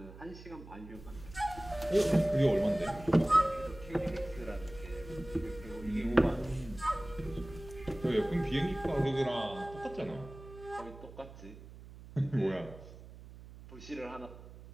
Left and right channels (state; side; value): noise; right; hum, 16 dB below the sound